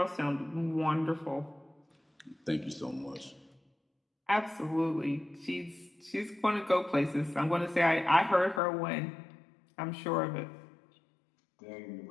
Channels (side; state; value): right; drops out; at 8.6 s